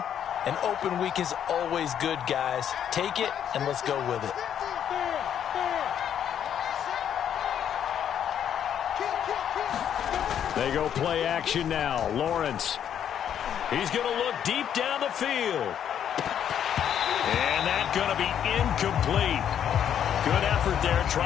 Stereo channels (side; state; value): right; quieter; 9.3 dB